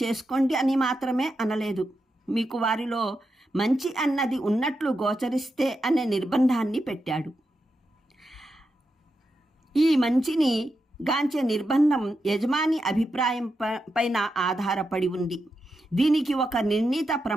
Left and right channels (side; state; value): both; normal; correlation 0.87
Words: చేసుకోండి అని మాత్రమే అనలేదు, మీకు వారిలో మంచి అన్నది ఉన్నట్లు గోచరిస్తే అనే నిర్బంధాన్ని పెట్టాడు. ఈ మంచిని గాంచే నిర్బంధం యజమాని అభిప్రాయం పైన ఆధారపడి ఉంది. దీనికి ఒక నిర్ణీత